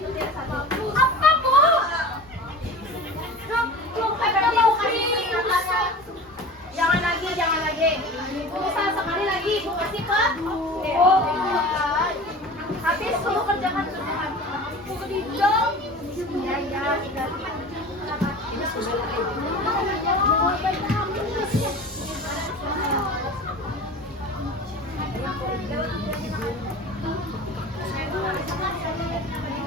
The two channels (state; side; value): normal; both; correlation 0.36